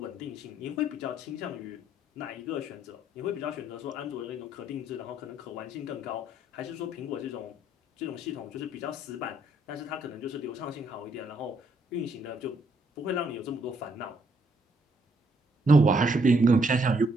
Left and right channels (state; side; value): normal; both; correlation 0.71